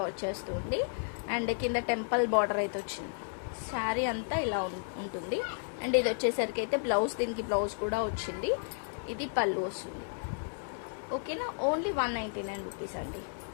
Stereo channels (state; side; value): silent; right; digital silence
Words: వచ్చేస్తుంది. అండ్ కింద టెంపుల్ బార్డర్ అయితే వచ్చింది. శారీ అంతా ఇలా ఉంటుంది. అండ్ ఇది వచ్చేసరికి అయితే బ్లౌజ్, దీనికి బ్లౌజ్ కూడా వచ్చింది. ఇది పళ్ళు వస్తుంది, ఓకేనా. ఓన్లీ 199 రూపీస్ అండి.